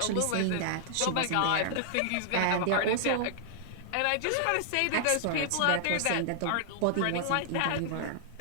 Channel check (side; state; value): both; different; correlation -0.01